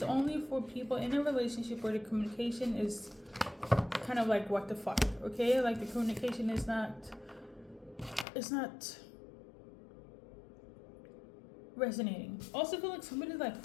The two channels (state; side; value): drops out; right; at 8.2 s